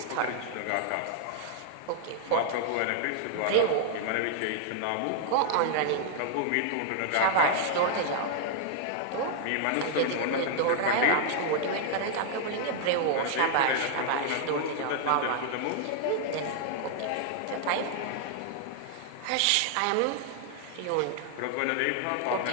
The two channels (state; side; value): different; both; correlation -0.01